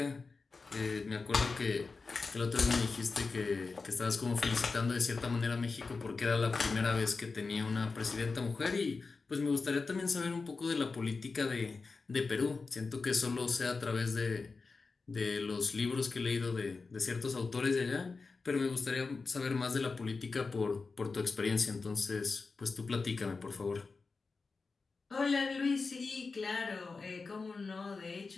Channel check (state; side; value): quieter; right; 4.2 dB